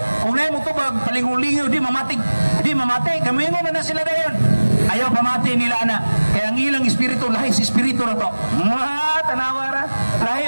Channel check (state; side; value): inverted; both; correlation -1.00